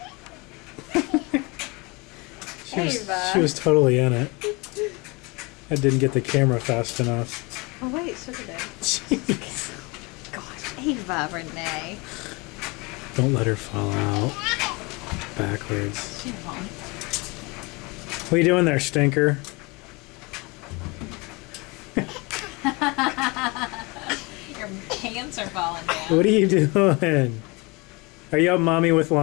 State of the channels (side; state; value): right; quieter; 26.8 dB